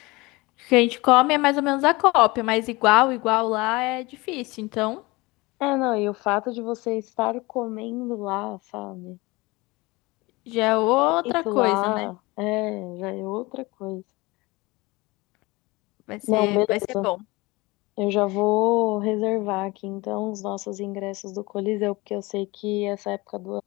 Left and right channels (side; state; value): right; quieter; 23.2 dB